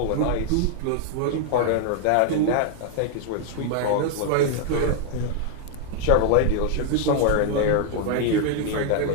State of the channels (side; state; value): both; different; correlation 0.00